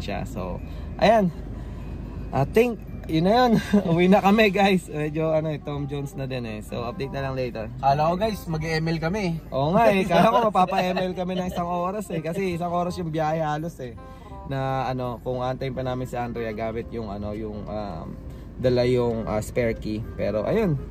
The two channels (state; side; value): identical; both; correlation 1.00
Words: So ayan, I think yun na yun. Uwi na kami guys. Medyo Tom Jones na din eh. So update na lang later. Kala ko guys, mag-ML kami. Oo nga eh. Kala ko mapapa-ML kami ng 1 oras eh. Kasi 1 oras yung biyahe halos eh. Na kung antayin pa namin si Andrea gamit yung dala yung spare key. Pero ayun.